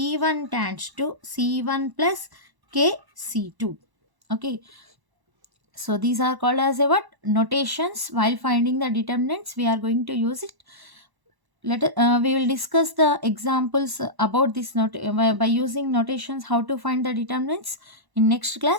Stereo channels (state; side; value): late; left; 1.1 ms